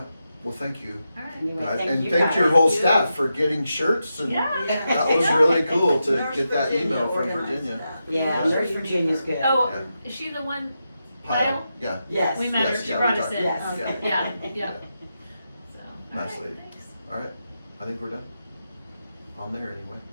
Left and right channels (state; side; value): inverted; both; correlation -0.87